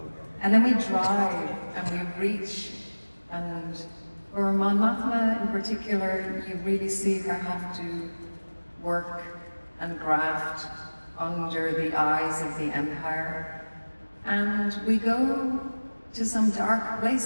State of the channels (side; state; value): both; inverted; correlation -1.00